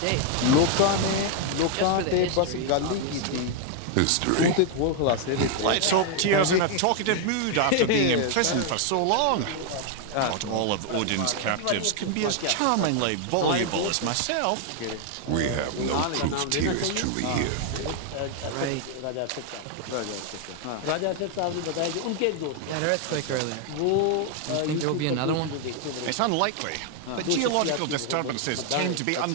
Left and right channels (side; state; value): both; different; correlation 0.00